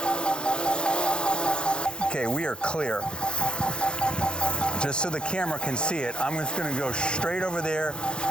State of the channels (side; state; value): right; late; 0.049 ms